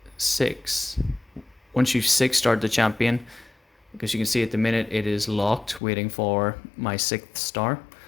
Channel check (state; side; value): drops out; right; at 5.8 s